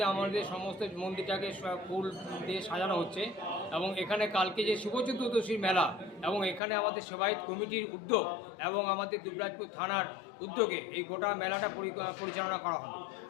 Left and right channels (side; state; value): right; drops out; at 6.6 s